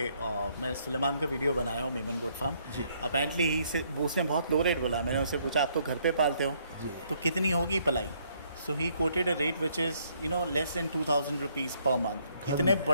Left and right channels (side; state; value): both; inverted; correlation -0.69